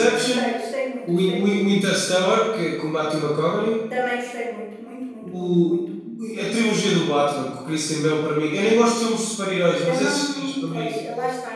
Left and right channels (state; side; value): identical; both; correlation 1.00